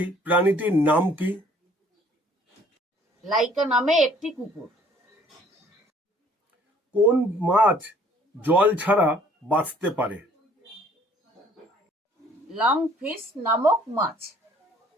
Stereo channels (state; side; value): normal; both; correlation 0.58